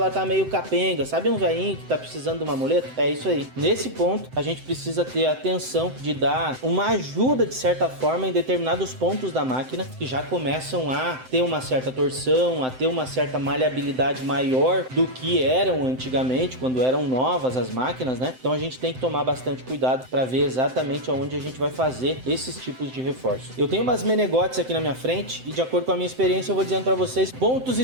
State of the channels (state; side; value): late; left; 7.8 ms